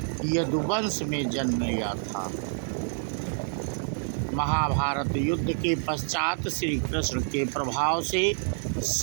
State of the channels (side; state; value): left; silent; 60 dB below the other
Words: यदुवंश में जन्म लिया था। महाभारत युद्ध के पश्चात श्री कृष्ण के प्रभाव से